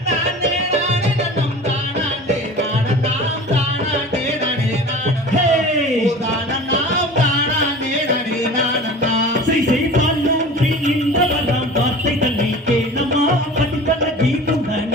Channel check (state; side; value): normal; both; correlation 0.39